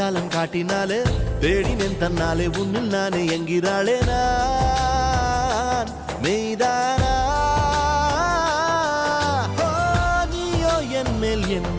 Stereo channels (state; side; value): identical; both; correlation 1.00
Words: காட்டினாலே தேடினேன் தன்னாலே உன்னில் நானே என்கிறாளே நான் மெய்தானா என் மேல்